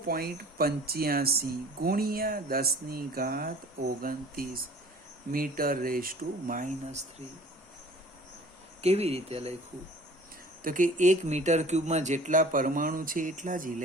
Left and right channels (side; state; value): both; normal; correlation 0.47